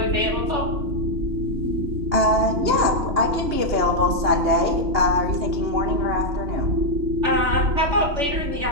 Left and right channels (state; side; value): late; left; 2.9 ms